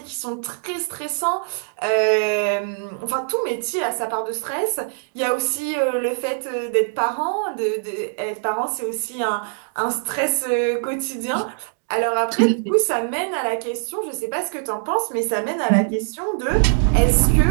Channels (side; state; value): left; silent; digital silence